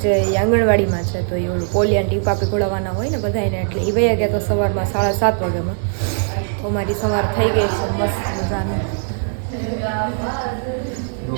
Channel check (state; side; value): silent; left; digital silence